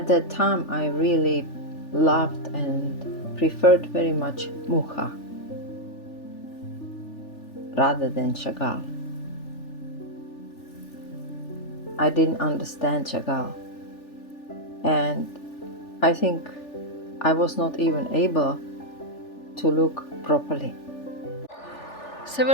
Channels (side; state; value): right; late; 3.4 ms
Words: that time I really loved and preferred very much Mucha rather than Chagall. I didn't understand Chagall, and I think I was not even able to look properly.